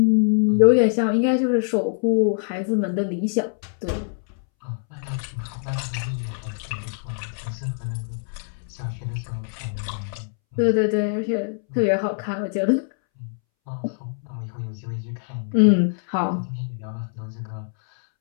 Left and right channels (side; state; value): right; silent; 63 dB below the other